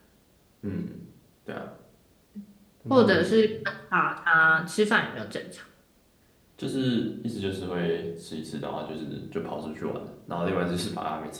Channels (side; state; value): both; identical; correlation 1.00